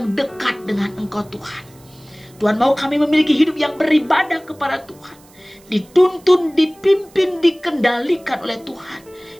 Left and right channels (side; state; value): right; noise; hiss, 27 dB below the sound